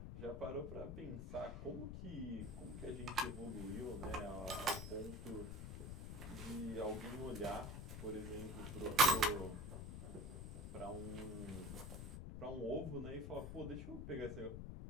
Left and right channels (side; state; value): left; noise; rumble, 6 dB below the sound